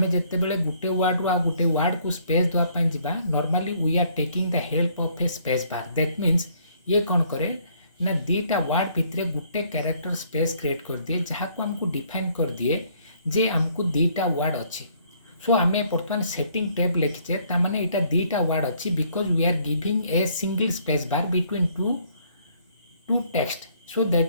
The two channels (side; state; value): both; inverted; correlation -0.64